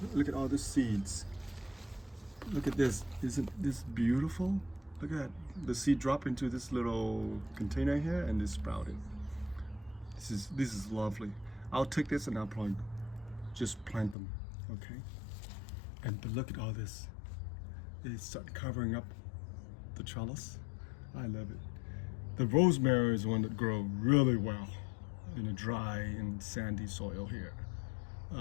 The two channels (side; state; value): right; drops out; at 14.2 s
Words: Look at all the seeds. Look at this. Isn't this beautiful? Look at that. The seed drop into this little container here and it sprouted. This is lovely. I'll take this and I'll probably just plant them. Okay. But look at all this. They start covering up the trellis. I love it. The rosemary is one that grows really well in a dry and sandy soil here.